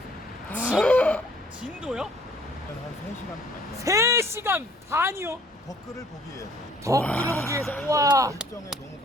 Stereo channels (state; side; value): normal; both; correlation 0.58